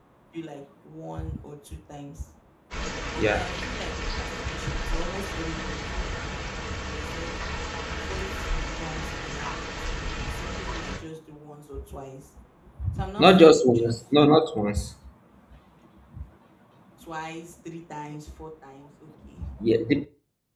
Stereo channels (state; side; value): identical; both; correlation 1.00